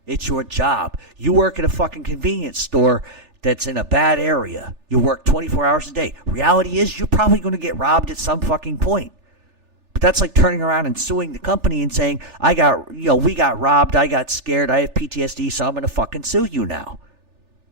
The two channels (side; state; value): left; late; 3.4 ms